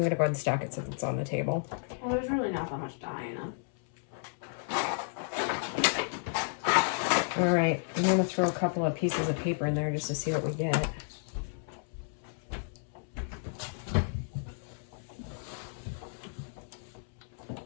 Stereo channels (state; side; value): silent; right; 56 dB below the other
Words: going to go ahead and stack it since it's on the table. Well, there's really not that much dye in them. All right, I'm going to throw a couple of pieces of paper in there just to see what we get.